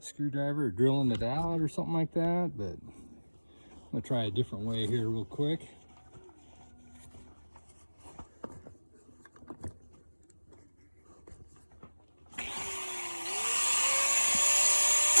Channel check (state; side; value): inverted; both; correlation -1.00